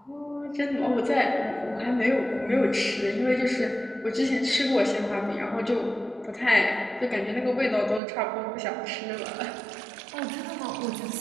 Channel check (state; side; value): drops out; left; at 8.0 s